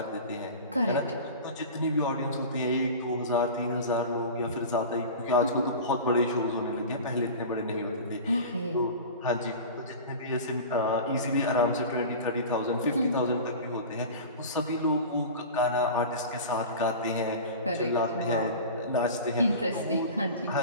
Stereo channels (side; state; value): both; inverted; correlation -0.33